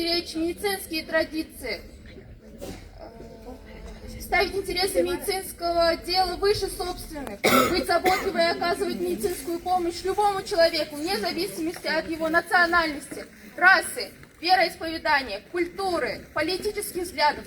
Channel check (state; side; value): identical; both; correlation 1.00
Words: медицинские традиции, ставить интересы медицинского дела выше собственных, быть заботливой и оказывать медицинскую помощь любому человеку, вне зависимости от его национальности, расы, вероисповедания, культуры, политических взглядов,